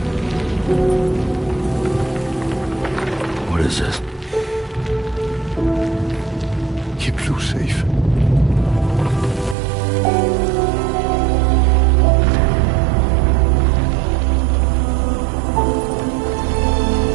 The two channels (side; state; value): left; drops out; at 9.6 s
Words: What is this? Keep Lou safe.